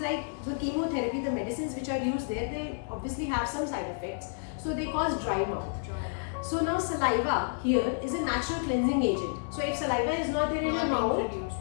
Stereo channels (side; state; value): right; silent; digital silence